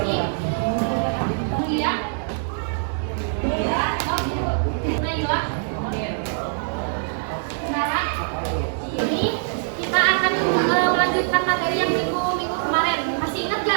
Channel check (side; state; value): left; silent; digital silence